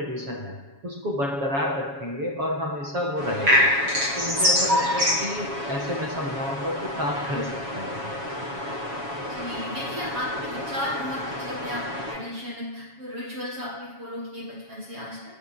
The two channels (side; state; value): left; late; 7.2 ms